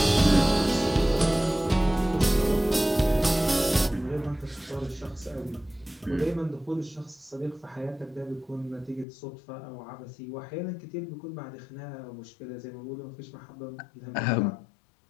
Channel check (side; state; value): right; drops out; at 9.1 s